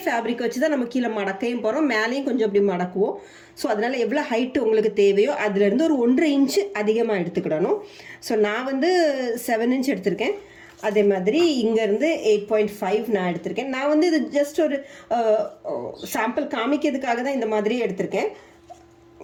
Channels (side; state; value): both; identical; correlation 1.00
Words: ஃபேப்ரிக் வச்சு தான் நம்ம கீழே மடக்கையும் போகிறோம், மேலேயும் கொஞ்சம் அப்படி மடக்குவோம். ஸோ அதனால் எவ்வளோ ஹைட்டு உங்களுக்கு தேவையோ அதுலேருந்து ஒரு 1.5 இன்ச்சு அதிகமாக எடுத்துக்கிடணும். ஸோ நான் வந்து 7 இன்ச் எடுத்திருக்கேன். அதே மாதிரி இங்கேருந்து 8.5 நான் எடுத்திருக்கேன். நான் வந்து இது ஜஸ்ட் ஒரு சாம்பிள் காமிக்கிறதுக்காக தான் இந்த மாதிரி எடுத்திருக்கேன்.